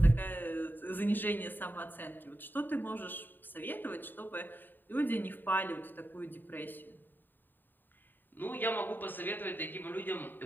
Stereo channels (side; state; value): right; late; 0.092 ms